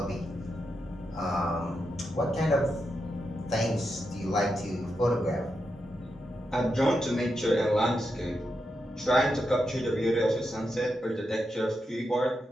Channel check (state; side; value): normal; both; correlation 0.85